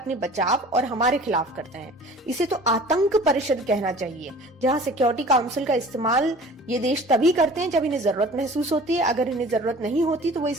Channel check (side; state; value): both; normal; correlation 0.45